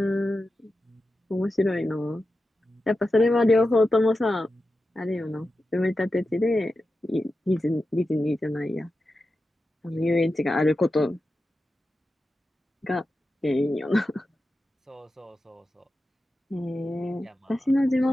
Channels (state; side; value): normal; both; correlation 0.91